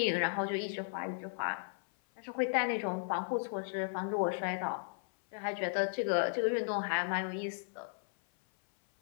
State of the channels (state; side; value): silent; right; 54 dB below the other